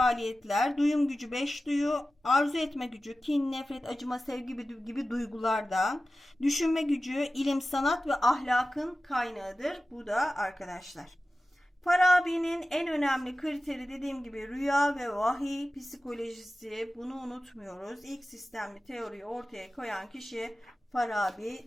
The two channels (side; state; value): both; normal; correlation 0.95